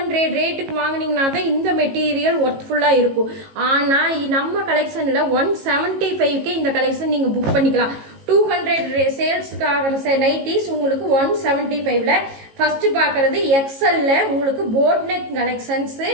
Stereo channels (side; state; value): left; late; 18 ms